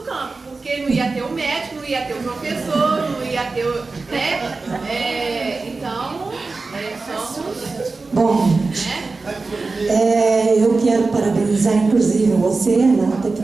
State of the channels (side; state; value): left; quieter; 3.9 dB